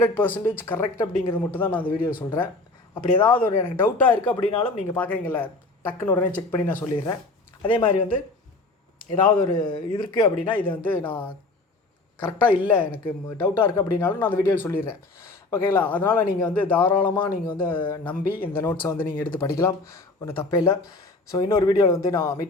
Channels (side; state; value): right; quieter; 3.2 dB